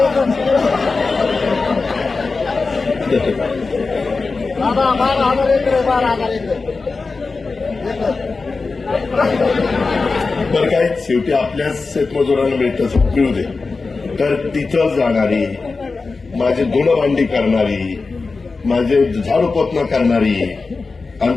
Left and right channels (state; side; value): quieter; right; 4.1 dB